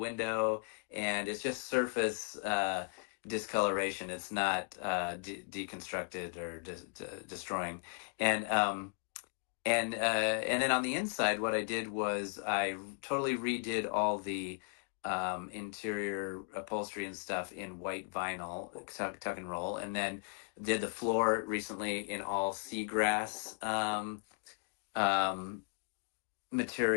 and it's just surface discoloration. It's not deconstructed or destroying. And and then on the inside, what I did was I totally redid all the interior upholstery and stuff in white vinyl, tuck and roll, and then did the floor recently in all seagrass um,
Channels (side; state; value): right; quieter; 36.9 dB